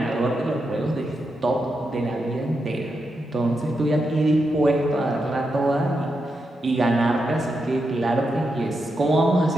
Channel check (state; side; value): normal; both; correlation 0.85